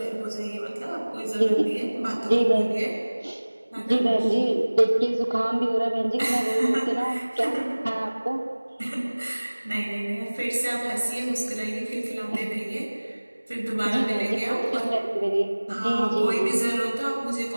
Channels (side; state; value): both; inverted; correlation -1.00